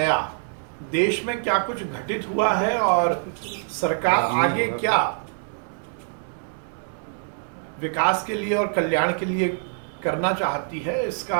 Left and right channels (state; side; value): silent; left; 62 dB below the other